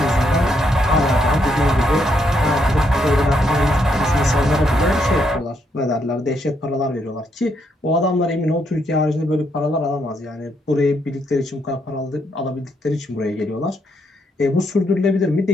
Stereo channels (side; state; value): both; normal; correlation 0.76